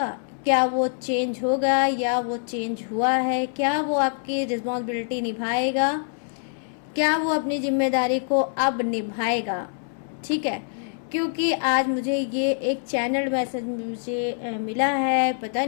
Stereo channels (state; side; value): silent; right; 62 dB below the other